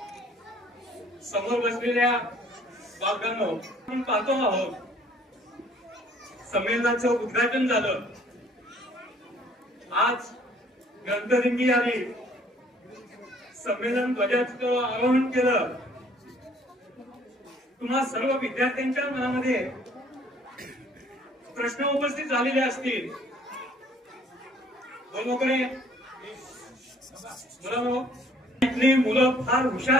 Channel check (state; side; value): normal; both; correlation 0.58